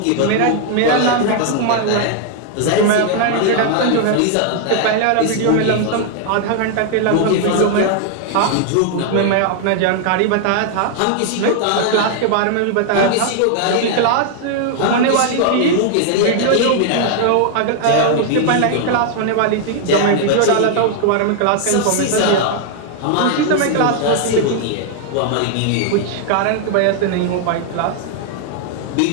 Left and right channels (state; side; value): different; both; correlation 0.00